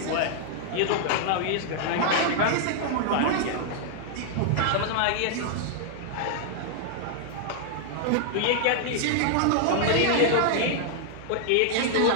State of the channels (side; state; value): both; different; correlation 0.00